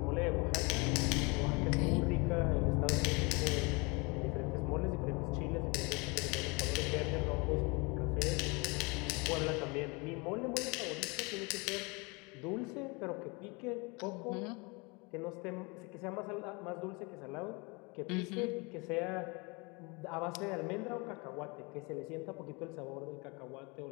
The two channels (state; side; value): quieter; right; 28.5 dB